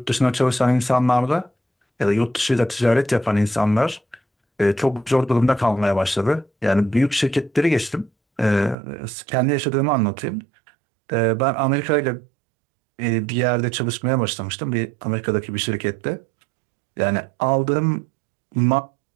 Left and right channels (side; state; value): left; drops out; at 8.8 s